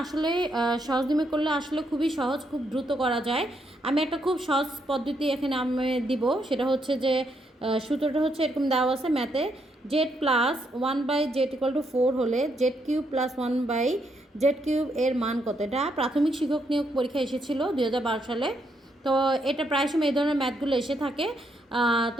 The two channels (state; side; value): normal; both; correlation 0.77